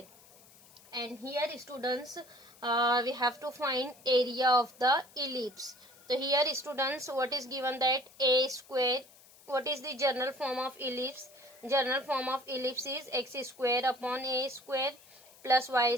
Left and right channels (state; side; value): noise; left; hiss, 24 dB below the sound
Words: And here students, we have to find area of the ellipse. So here students, what is given, that a square, what is the general form of ellipse? General form of ellipse is x square upon a square plus y